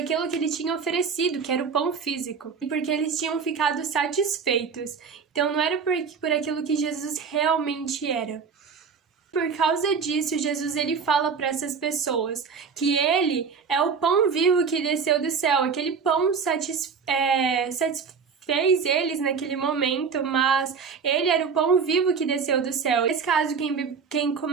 que ele tinha oferecido, que era o pão físico. E porque eles tinham ficado satisfeitos. Então não era por aquilo que Jesus realmente era. Por causa disso, Jesus ele fala para essas pessoas que ele é o pão vivo que desceu do céu. Aquele pão satisfez eles naquele momento, mas ele era o pão vivo que desceu do céu. Nesse caso, quem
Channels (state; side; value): quieter; left; 5.8 dB